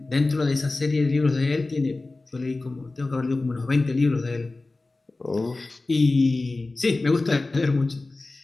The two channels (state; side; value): quieter; right; 3.2 dB